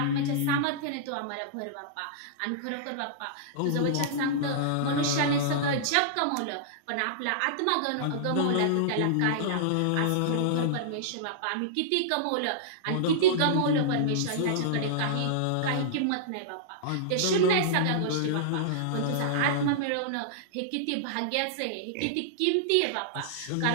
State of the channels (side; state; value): both; different; correlation -0.02